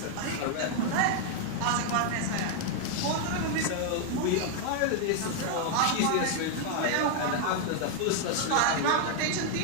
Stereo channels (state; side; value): different; both; correlation 0.00